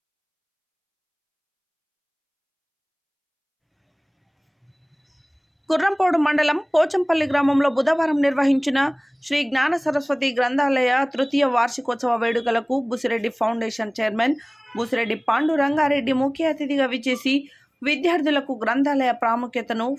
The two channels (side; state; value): both; identical; correlation 1.00